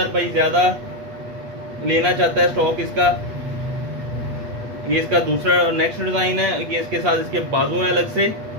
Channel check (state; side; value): late; left; 8.3 ms